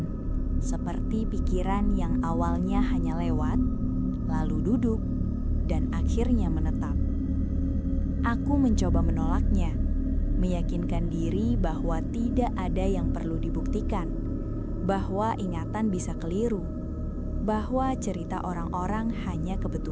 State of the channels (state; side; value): identical; both; correlation 1.00